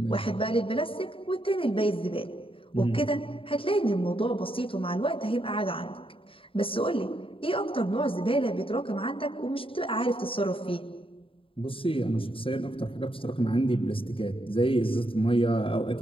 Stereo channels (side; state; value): right; late; 0.26 ms